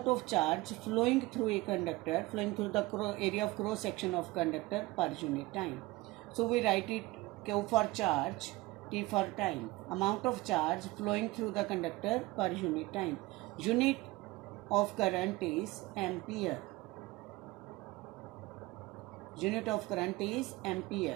of charge flowing through a conductor, flowing through the area of cross section of conductor per unit time. So we write it Q for charge, T for time. Amount of charge flowing through the conductor per unit time. Unit of current is ampere. Unit of current is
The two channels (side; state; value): left; quieter; 20.7 dB